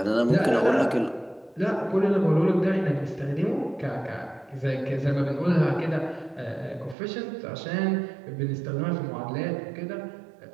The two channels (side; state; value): left; drops out; at 7.0 s